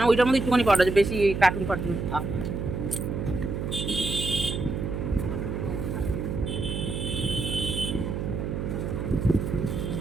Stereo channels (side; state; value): right; noise; hum, 3 dB below the sound